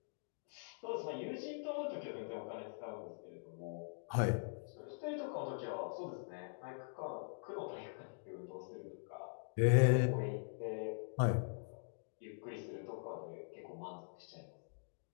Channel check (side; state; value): right; silent; digital silence